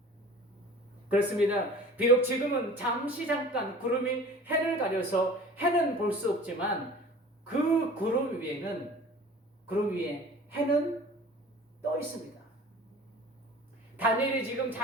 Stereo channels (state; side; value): normal; both; correlation 0.43